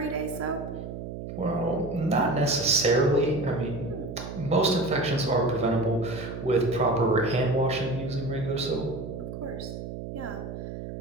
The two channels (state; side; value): noise; right; hum, 8 dB below the sound